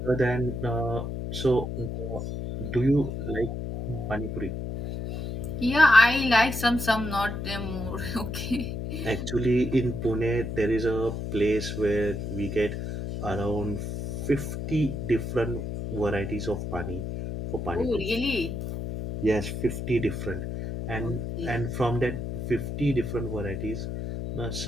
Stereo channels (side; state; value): left; noise; hum, 5 dB below the sound